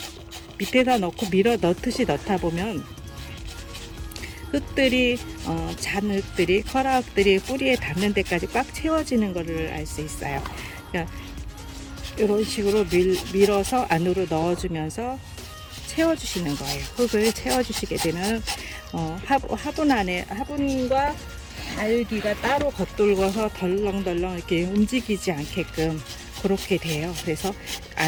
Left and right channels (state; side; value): identical; both; correlation 1.00